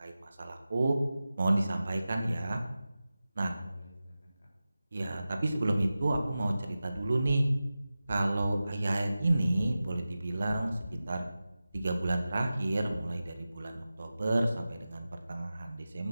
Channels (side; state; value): both; inverted; correlation -0.95